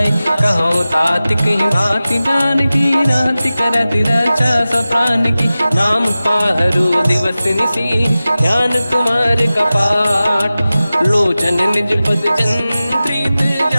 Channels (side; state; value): both; inverted; correlation -0.95